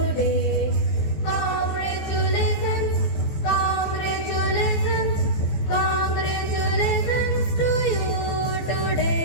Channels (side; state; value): right; late; 14 ms